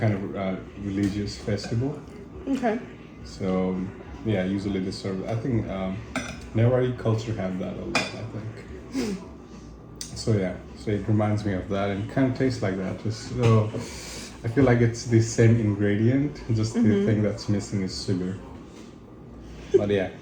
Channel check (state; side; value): identical; both; correlation 1.00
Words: of religious festival. Okay. So yeah, usually they serve. I think Newari culture have that a lot. I think. So yeah, so it reminds me of that, and kind of tastes like that. Just so I feel like it's the same ingredient. Just the thing that's missing is sugar. But yeah.